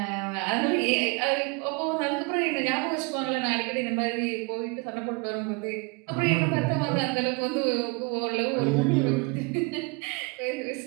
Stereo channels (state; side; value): quieter; left; 30.1 dB